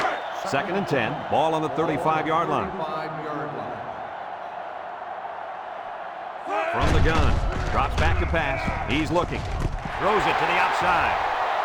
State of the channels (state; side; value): identical; both; correlation 1.00